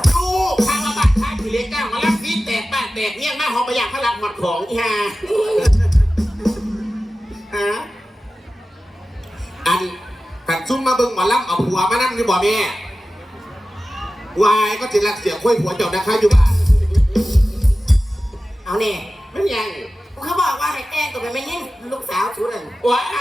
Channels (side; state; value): both; normal; correlation 0.95